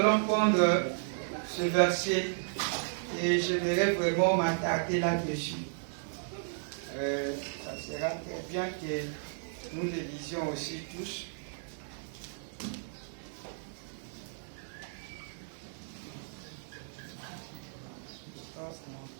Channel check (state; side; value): silent; left; 55 dB below the other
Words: prendre ce verset et j'aimerais vraiment m'attarder là-dessus. Ça sera très bien que nous le lisions aussi tous.